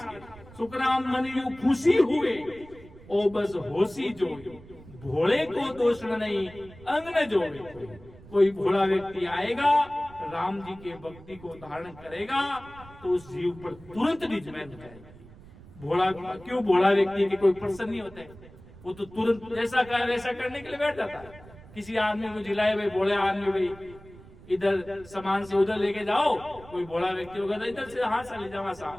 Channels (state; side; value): noise; right; rumble, 20 dB below the sound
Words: के, सुखराम मन यू खुशी हुए ओ बस होशी जो, भोले को दोष नहीं अंग न जोड़े। कोई भोला व्यक्ति आएगा, राम जी के भक्ति को धारण करेगा, तो उस जीव पर तुरंत निज में जाएगी। भोला क्यों, भोला व्यक्ति के कोई प्रसन्न नहीं होता है, वो तो तुरंत जैसा कहे वैसा करने के लिए बैठ जाता है। किसी आदमी को जिलाए, भाई भोले आदमी, भाई इधर सामान से उधर लेके जाओ, कोई भोला व्यक्ति होगा तो इधर से हाथ से ले जावा सा,